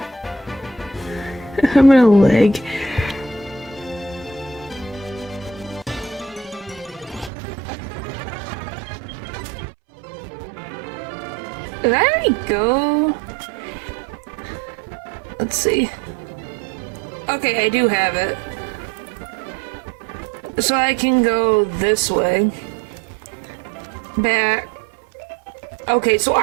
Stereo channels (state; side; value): drops out; left; at 7.3 s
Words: I'm gonna leg. There we go. Let's see. Okay, I do have it. So I can go this way. Back. Okay, so